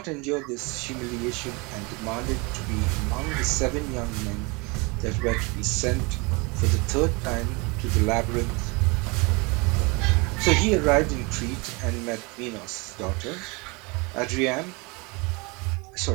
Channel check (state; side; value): quieter; left; 28.2 dB